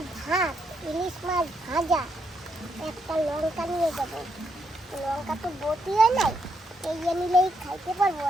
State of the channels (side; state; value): both; normal; correlation 0.78